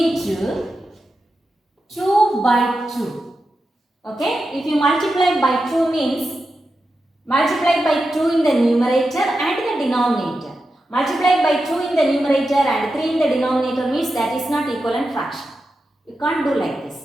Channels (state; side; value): normal; both; correlation 0.90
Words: 2 by 2. Okay, if you multiply by 2 means multiply by 2 in the numerator and the denominator. Multiply by 2 in the numerator and 3 in the denominator means that is not equivalent fraction. You can't do like this.